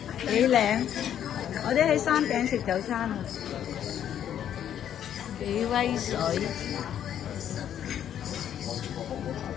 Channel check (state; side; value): quieter; right; 10.0 dB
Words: 幾靚！我哋喺山頂食早餐啊，幾威水！